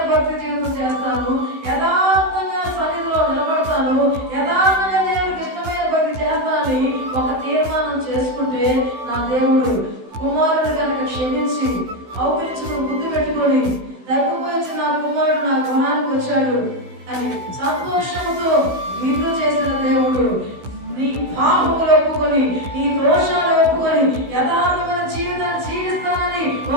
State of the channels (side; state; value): left; late; 16 ms